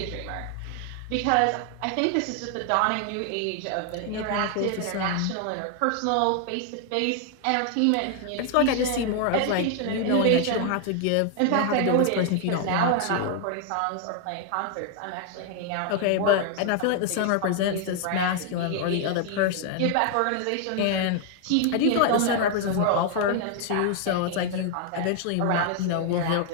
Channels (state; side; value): different; both; correlation 0.00